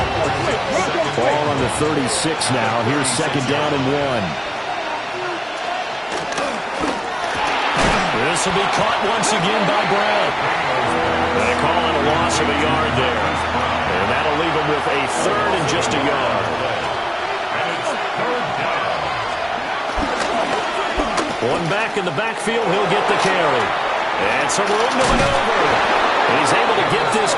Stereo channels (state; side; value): identical; both; correlation 1.00